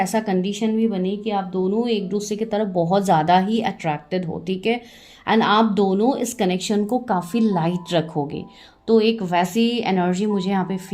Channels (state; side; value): identical; both; correlation 1.00